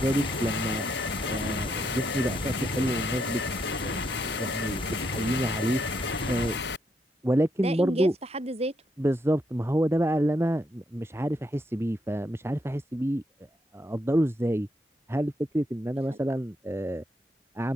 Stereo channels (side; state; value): both; normal; correlation 0.78